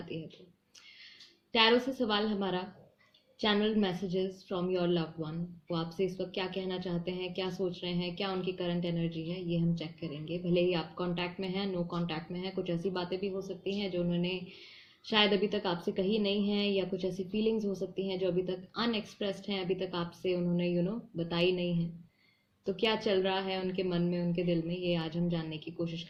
है तो। टैरो से सवाल हमारा channel messages from your loved one. वो आपसे इस वक्त क्या कहना चाहते हैं, क्या सोच रहे हैं, क्या उनकी करंट एनर्जी है, ये हम चेक करेंगे। भले ही आप कांटेक्ट में हैं, नो कांटेक्ट में हैं, कुछ ऐसी बातें भी हो सकती हैं जो उन्होंने शायद अभी तक आपसे कही नहीं है, या कुछ ऐसी फीलिंग्स हो सकती हैं जो अभी तक अनएक्सप्रेस्ड हैं, अभी तक आपसे उन्होंने बताई नहीं है। तो क्या चल रहा है उनके मन में, उनके दिल में, ये आज हम जानने की कोशिश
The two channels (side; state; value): both; identical; correlation 1.00